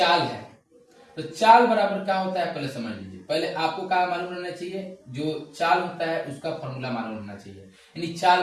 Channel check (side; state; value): both; identical; correlation 1.00